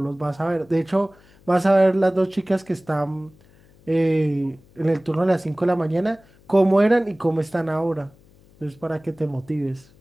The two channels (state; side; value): noise; left; hum, 28 dB below the sound